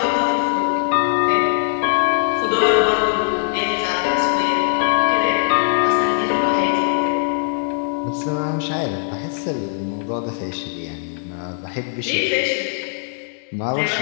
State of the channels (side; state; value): right; silent; 65 dB below the other